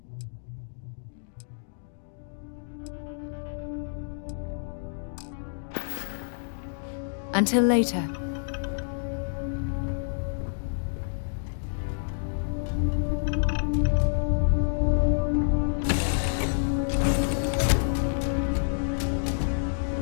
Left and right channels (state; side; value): silent; right; digital silence